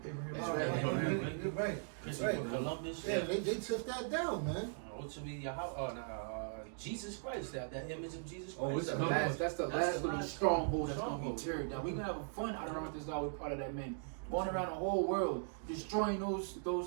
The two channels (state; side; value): silent; left; digital silence